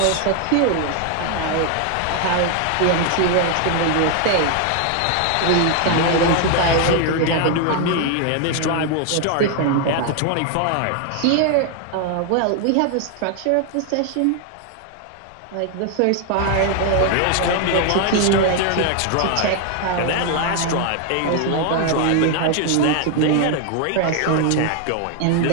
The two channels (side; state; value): both; different; correlation 0.00